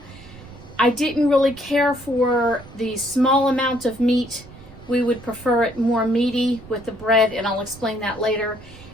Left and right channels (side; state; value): right; noise; rumble, 20 dB below the sound